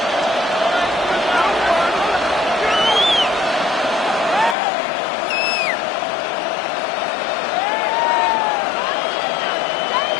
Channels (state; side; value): drops out; right; at 4.5 s